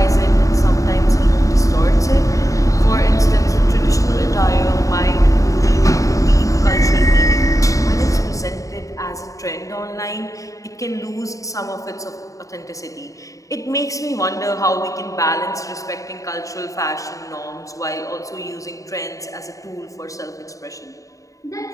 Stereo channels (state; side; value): late; right; 0.16 ms